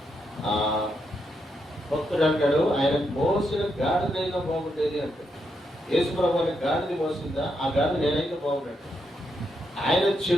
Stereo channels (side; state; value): both; normal; correlation 0.81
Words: భక్తుడు అంటాడు, ఆయన మోసిన గాడిదైనా బాగుండేది అంటాడు. యేసు ప్రభువారికి గాడిది మోసిందా? ఆ గాడిద నేనైతే బాగుండేది. ఆయన